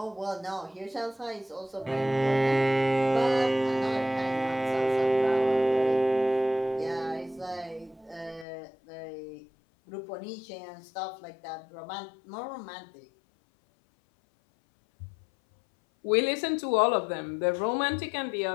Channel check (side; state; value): right; drops out; at 8.5 s